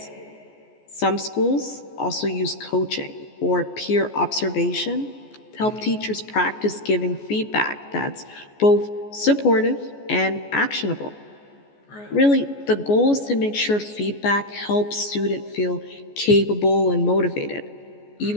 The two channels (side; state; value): right; late; 14 ms